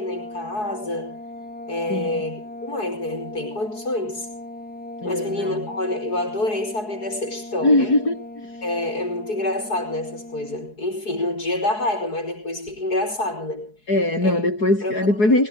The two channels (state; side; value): late; right; 4.7 ms